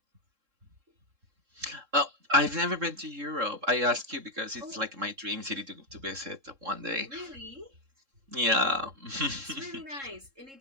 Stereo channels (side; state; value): left; late; 3.7 ms